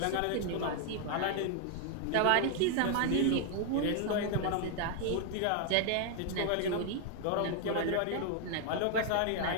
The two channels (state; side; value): different; both; correlation 0.00